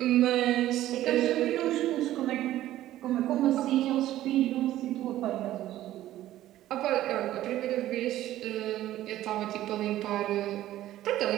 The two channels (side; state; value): left; quieter; 14.0 dB